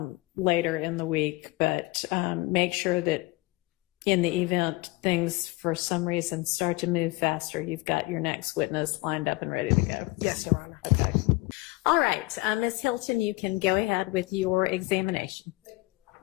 later in the week, but make sure that in the event things for some reason start to move faster, you've got your next witness lined up and ready to go. Yes, Your Honor. Okay. All right, Ms. Hilton, you can go ahead with your examination.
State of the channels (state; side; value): quieter; right; 21.0 dB